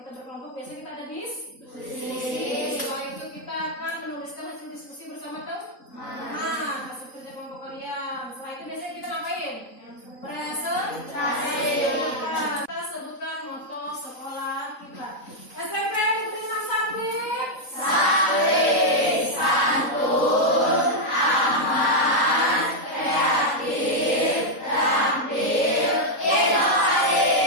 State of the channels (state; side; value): late; right; 3.8 ms